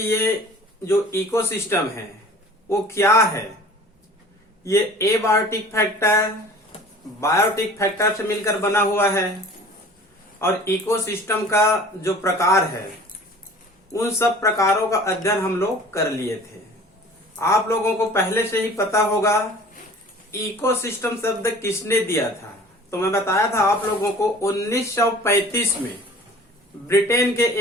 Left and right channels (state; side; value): normal; both; correlation 0.46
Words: जो इकोसिस्टम है वो क्या है। ये एबायोटिक फैक्टर बायोटिक फैक्टर से मिलकर बना हुआ है और इकोसिस्टम का जो प्रकार है उन सब प्रकारों का अध्ययन हम लोग कर लिए थे। आप लोगों को पहले से ही पता होगा इकोसिस्टम शब्द किसने दिया था। तो मैं बताया था आप लोगों को 1935 में ब्रिटेन के